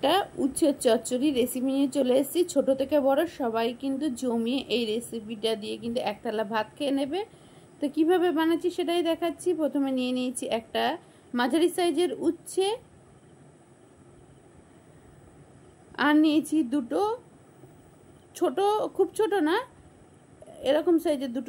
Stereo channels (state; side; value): identical; both; correlation 1.00